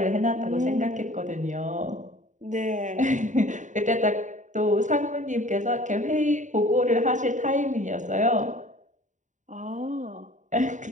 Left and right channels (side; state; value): left; late; 0.36 ms